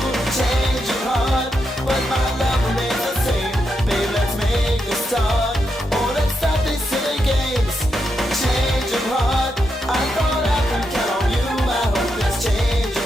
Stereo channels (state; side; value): normal; both; correlation 0.84